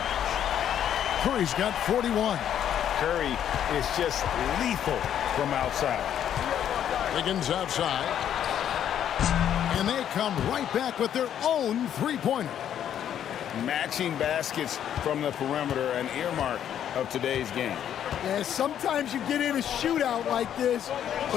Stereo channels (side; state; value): right; quieter; 9.9 dB